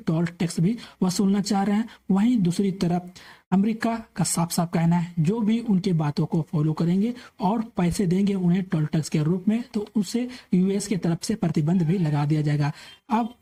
टैक्स भी वसूलना चाह रहे हैं, वहीं दूसरी तरफ अमेरिका का साफ साफ कहना है जो भी उनके बातों को फॉलो करेंगे और पैसे देंगे उन्हें टोल टैक्स के रूप में, तो उसे यूएस की तरफ से प्रतिबंध भी लगा दिया जाएगा। अब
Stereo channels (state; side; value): identical; both; correlation 1.00